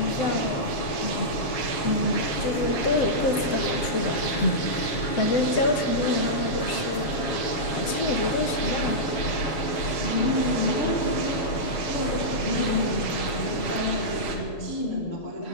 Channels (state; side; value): late; right; 7.1 ms